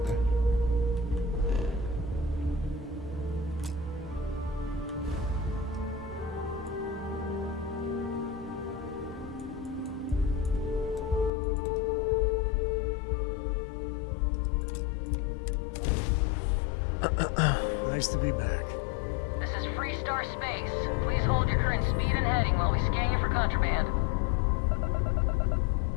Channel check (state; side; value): drops out; right; at 11.3 s